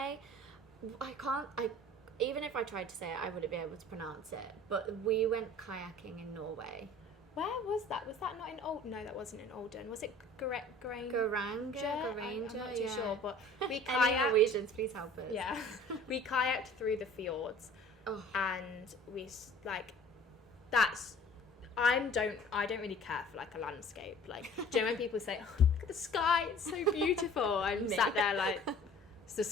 Even if I tried to say it, I wouldn't be able to pronounce it. But we went kayaking in Norway. Where was that? Was that not in Old? No, that wasn't in Olden. Was it Garanga? I'm not too sure, but we kayaked. Any Norwegians, please help us. Yeah, we kayaked through the fjords, and we like. I don't really care for like a landscape. Like, do you know when people say, "Oh, look at the sky, it's so beautiful"? I'm sat there like, it's the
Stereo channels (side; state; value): both; normal; correlation 0.48